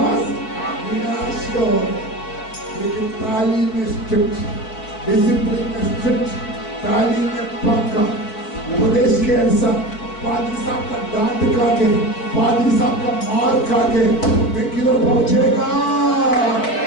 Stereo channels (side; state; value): right; late; 4.6 ms